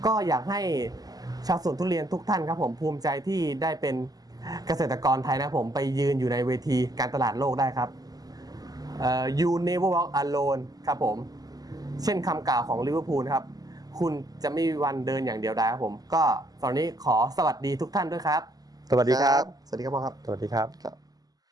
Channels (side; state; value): left; late; 0.18 ms